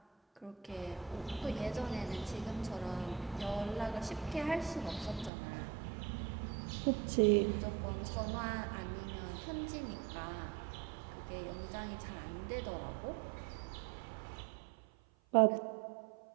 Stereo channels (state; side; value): drops out; left; at 5.3 s